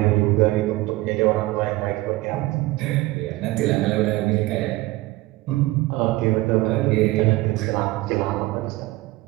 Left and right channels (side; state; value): left; quieter; 19.1 dB